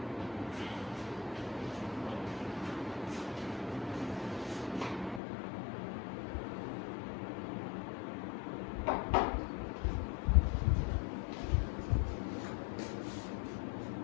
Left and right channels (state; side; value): drops out; right; at 5.2 s